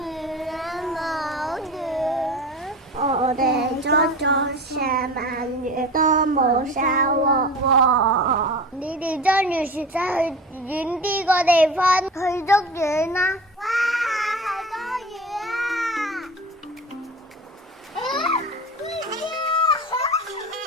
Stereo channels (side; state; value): both; normal; correlation 0.34